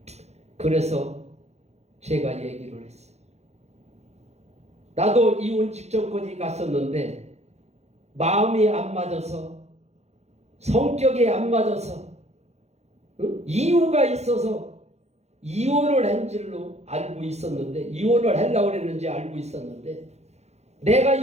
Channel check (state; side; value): late; left; 0.32 ms